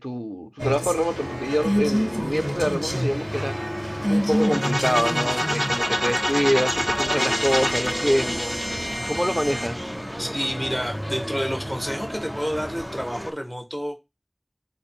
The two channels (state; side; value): identical; both; correlation 1.00